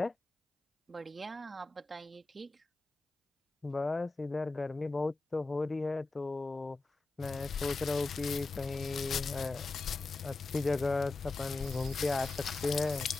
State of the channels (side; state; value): right; quieter; 3.4 dB